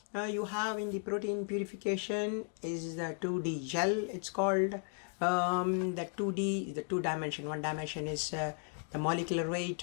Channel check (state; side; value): silent; right; 54 dB below the other